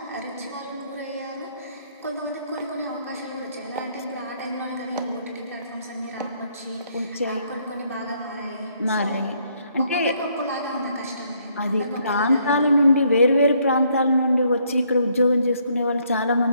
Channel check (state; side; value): inverted; both; correlation -0.69